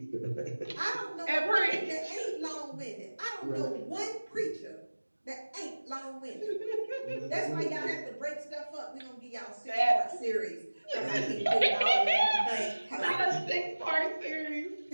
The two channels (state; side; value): inverted; both; correlation -1.00